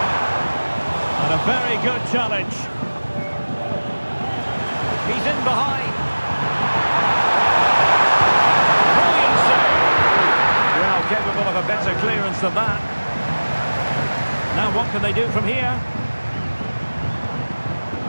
And a very good challenge. He's in behind. Brilliant save. Well, capable of a better clearance than that. Now what can they do from here?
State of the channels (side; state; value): both; inverted; correlation -1.00